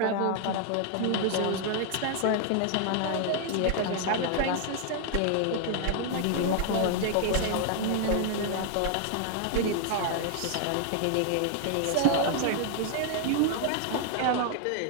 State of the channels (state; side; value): different; both; correlation 0.00